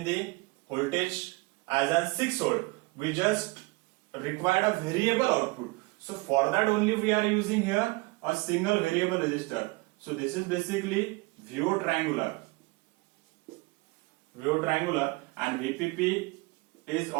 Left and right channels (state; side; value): quieter; left; 25.3 dB